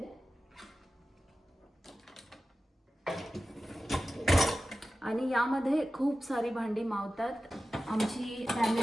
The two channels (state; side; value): normal; both; correlation 0.95